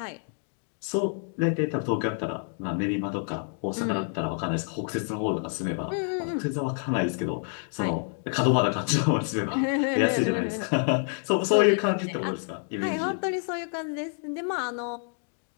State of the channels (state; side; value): silent; right; 55 dB below the other